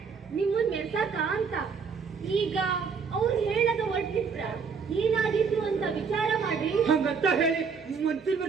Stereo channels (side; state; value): left; quieter; 5.8 dB